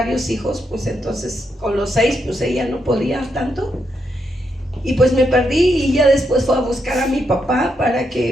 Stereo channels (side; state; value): both; normal; correlation 0.80